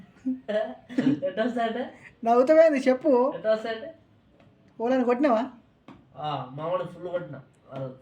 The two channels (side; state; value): both; identical; correlation 1.00